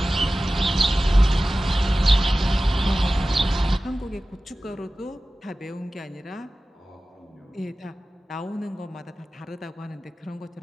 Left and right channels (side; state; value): both; normal; correlation 0.96